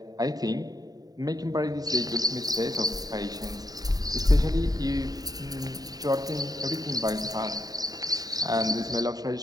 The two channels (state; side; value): late; left; 0.18 ms